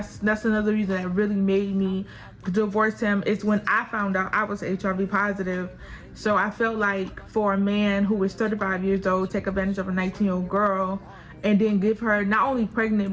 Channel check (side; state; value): both; identical; correlation 1.00